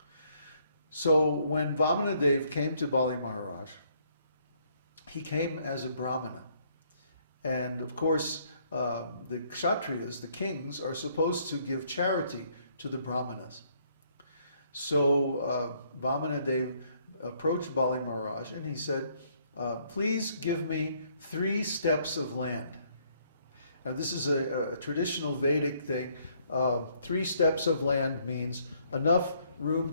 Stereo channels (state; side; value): inverted; both; correlation -0.67